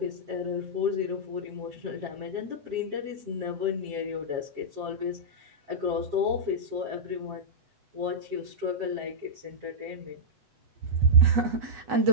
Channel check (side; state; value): left; late; 8.0 ms